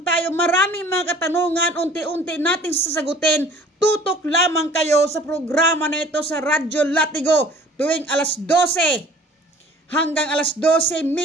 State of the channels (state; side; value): normal; both; correlation 0.50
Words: tayo? Maraming mga katanungan, unti-unti nating sasagutin. Tutok lamang kayo sa programa na ito sa Radyo Latigo tuwing alas 12 hanggang alas